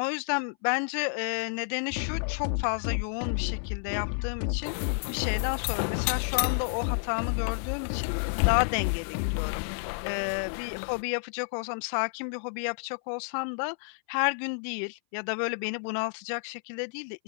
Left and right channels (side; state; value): right; silent; 58 dB below the other